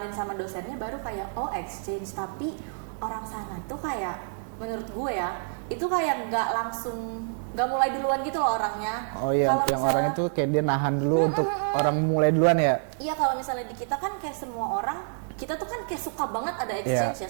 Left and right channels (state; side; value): silent; left; digital silence